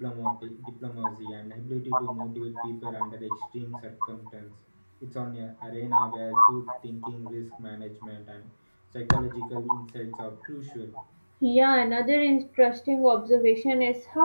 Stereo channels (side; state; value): both; inverted; correlation -1.00